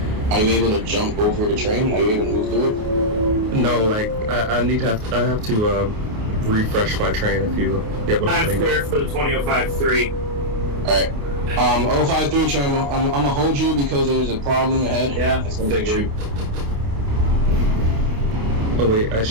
you able to jump over the train? Are you able to move through it? No, like I have to refresh my train if you get what I'm saying. Clear for the 20053. Alright. 053 train, I'm gonna hold you because there's a problem ahead. Yeah, it's gonna take you. Oh wait, I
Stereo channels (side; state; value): left; late; 28 ms